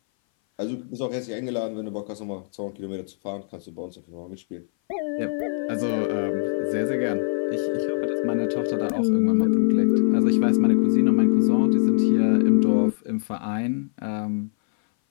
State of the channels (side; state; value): right; silent; 59 dB below the other